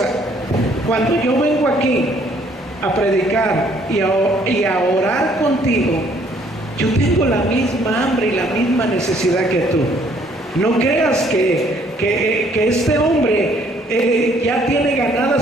Cuando yo vengo aquí a predicar y a orar contigo, yo tengo la misma hambre y la misma necesidad que tú. No creas que este hombre ya tiene ganada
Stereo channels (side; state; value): both; normal; correlation 0.63